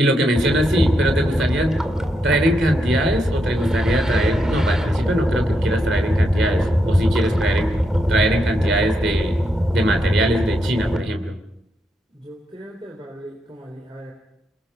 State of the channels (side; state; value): both; normal; correlation 0.81